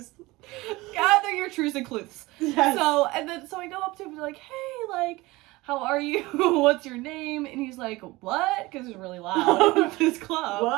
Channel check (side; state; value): left; quieter; 21.0 dB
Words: Gather your truths and clues. Yes. So I go up to him and be like, hey, like, how are you? What's your name? And he's like, what? Because it's really loud at this club.